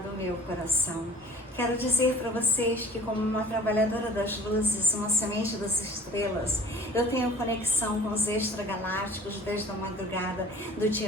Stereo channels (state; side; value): normal; both; correlation 0.47